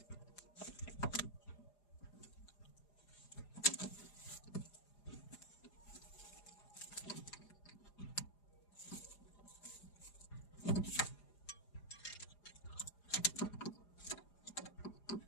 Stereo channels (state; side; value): late; right; 4.9 ms